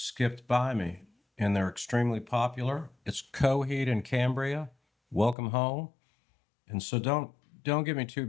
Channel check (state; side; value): drops out; right; at 5.4 s